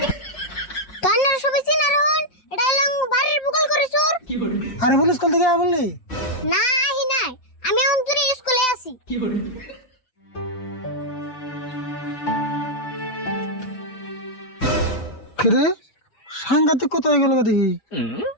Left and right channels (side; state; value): right; late; 5.8 ms